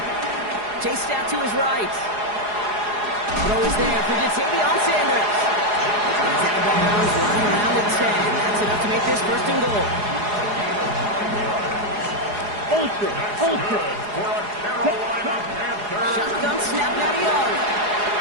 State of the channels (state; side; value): late; left; 4.8 ms